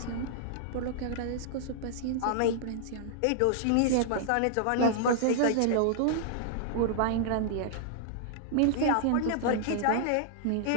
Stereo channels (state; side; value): different; both; correlation -0.01